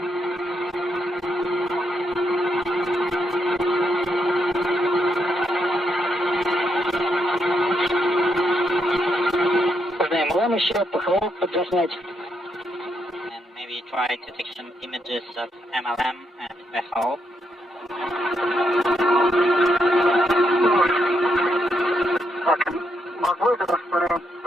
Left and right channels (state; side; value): normal; both; correlation 0.79